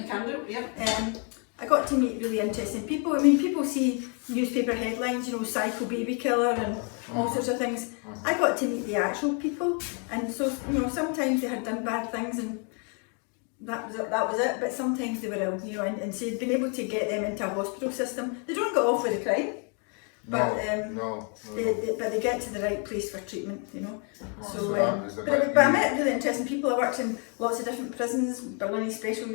can do, yeah. I got to meet really interesting people. I mean, people see newspaper headlines, you know, psycho baby killer and all sorts of things. I got to meet the actual people, and so, you know, sometimes they had done bad things and that was it, but sometimes they were ill, you know, and so being able to get them into a hospital system. They don't get off with the crime, but but they get to the right place for treatment, you know. But I met really interesting people. I worked in lots of different prisons, Berlin Special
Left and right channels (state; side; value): quieter; right; 38.6 dB